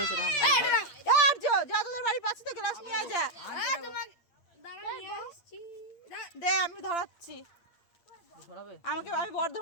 আর্য যা, তোদের বাড়ির পাশে তো গ্লাস নিয়ে যা। দে, আমি ধরাচ্ছি। আমি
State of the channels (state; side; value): late; right; 8.7 ms